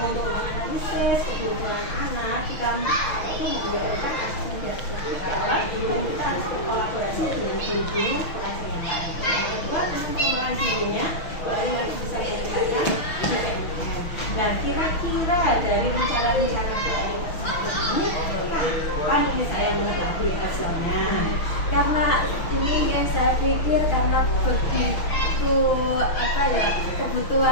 untuk menganalisis kebutuhan anak. Kita membuatkan asesmen dari sekolah. Kita harus berkolaborasi dengan guru pengajar yang lain. Kedua, untuk pengembangan dirinya, Bu Eli harus bisa meningkatkan PNM. Dan kira-kira dari rencana-rencana Bu Eli tersebut ini, kapan ini saya mengetahui hasilnya? Karena ini yang saya pikir karena begitu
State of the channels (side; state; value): right; late; 6.3 ms